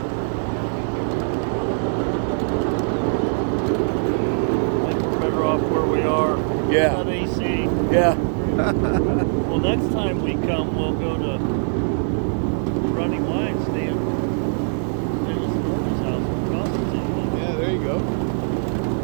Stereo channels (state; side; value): silent; left; digital silence